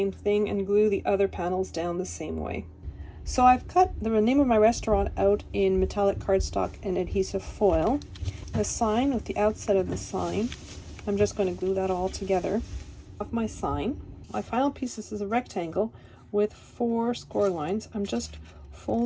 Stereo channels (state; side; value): identical; both; correlation 1.00